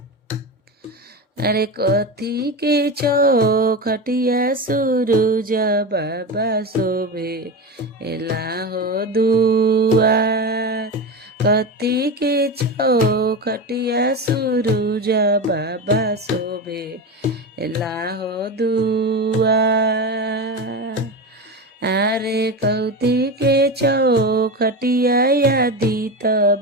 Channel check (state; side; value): normal; both; correlation 0.21